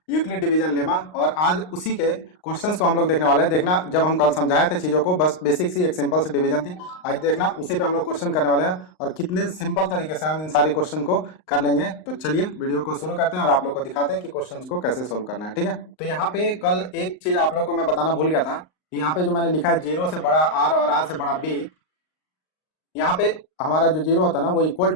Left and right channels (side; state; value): right; late; 39 ms